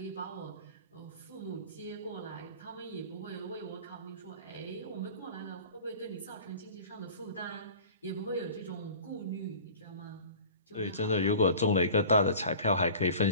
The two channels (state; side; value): inverted; both; correlation -0.41